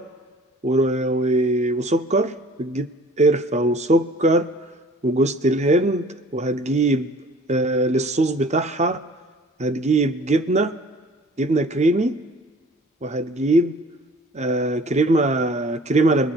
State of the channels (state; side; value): normal; both; correlation 0.49